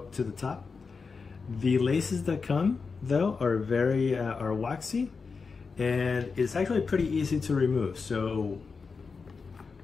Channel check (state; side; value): quieter; right; 4.9 dB